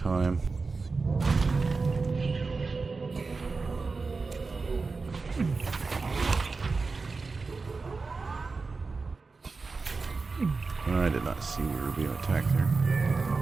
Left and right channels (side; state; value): left; quieter; 4.2 dB